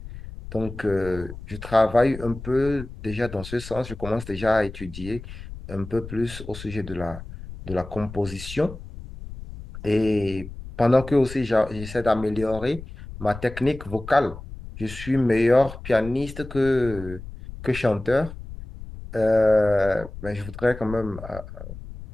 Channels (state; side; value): noise; left; rumble, 13 dB below the sound